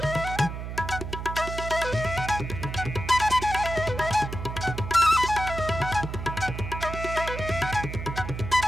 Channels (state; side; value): noise; right; hum, 6 dB below the sound